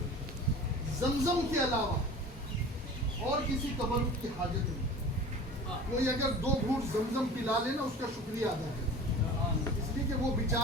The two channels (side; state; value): both; normal; correlation 0.38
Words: زمزم کے علاوہ اور کسی تبرک کی حاجت نہیں. کوئی اگر 2 گھونٹ زمزم پلا لے نا اس کا شکریہ ادا کرے, اس لیے کہ وہ